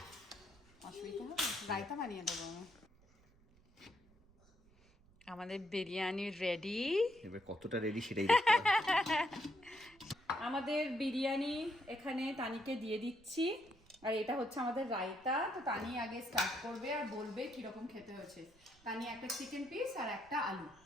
অসুবিধা হবে, রায়তা বানিয়ে দেবো আমি। আমাদের বিরিয়ানি রেডি। এবার কতটা রেডি সেটাই দেখতে হবে। আমাদের বিরিয়ানি এখানে তানিকে দিয়ে দিচ্ছি, আর এটা হচ্ছে আমাদের রায়তা। তো তানি আগে স্টার্ট করবে আর বলবে কিরকম খেতে হয়েছে। তানি একটা চিকেন পিস আর একটা আলু।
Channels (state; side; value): noise; right; rumble, 28 dB below the sound